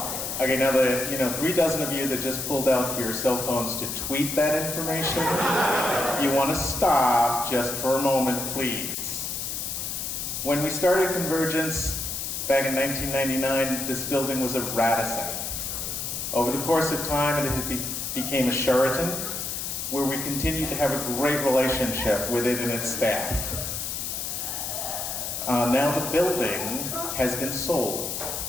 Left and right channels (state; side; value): noise; left; hiss, 4 dB below the sound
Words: Okay, now the 3 dozen of you that just pulled out your cell phones to tweet that information, you want to stop just for a moment, please. When we started CONvergence back in 1999, this building was a Radisson. Over the course of time, it became a Sheraton, where we continued to have a great relationship with it and its staff. Now the building has been sold.